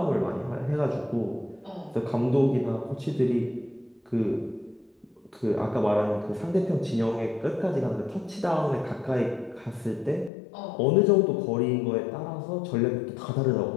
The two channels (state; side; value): drops out; right; at 10.3 s